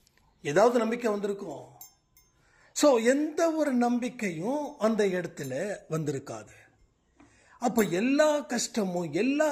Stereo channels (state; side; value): identical; both; correlation 1.00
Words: ஏதாவது நம்பிக்கை வந்திருக்கும். ஸோ எந்த ஒரு நம்பிக்கையும் அந்த இடத்துல வந்திருக்காது. அப்போ எல்லா கஷ்டமும் எல்லா